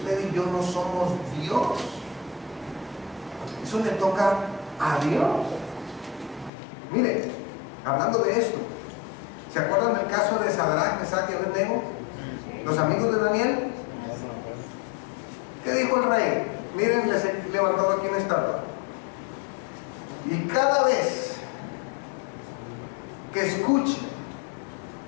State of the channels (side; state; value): right; drops out; at 6.5 s